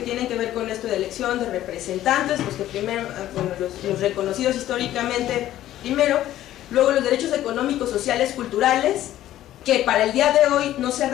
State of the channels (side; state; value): right; quieter; 13.3 dB